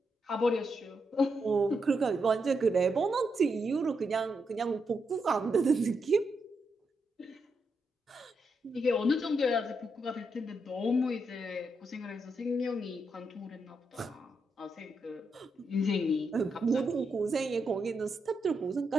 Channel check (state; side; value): normal; both; correlation 0.82